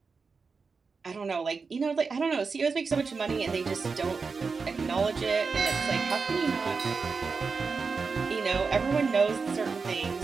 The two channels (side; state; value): left; quieter; 4.8 dB